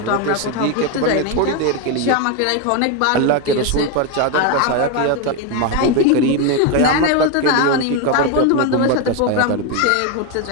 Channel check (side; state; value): both; different; correlation 0.02